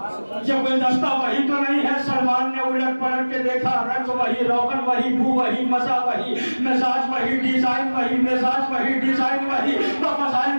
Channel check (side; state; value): both; inverted; correlation -1.00